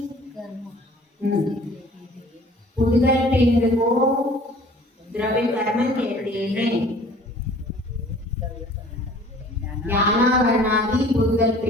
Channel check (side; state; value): both; normal; correlation 0.51